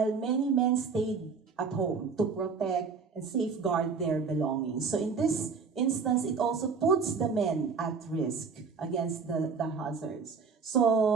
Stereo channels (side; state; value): left; quieter; 5.3 dB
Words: many men stayed at home to protect and safeguard their belongings. So in this instance, it also puts the men at risk against the hazards.